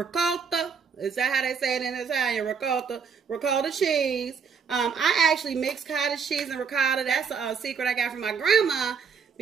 Is that how they say it in Italian? Ricotta cheese. I actually mix cottage cheese and ricotta. That's a secret I got from my grandma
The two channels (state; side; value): quieter; left; 6.1 dB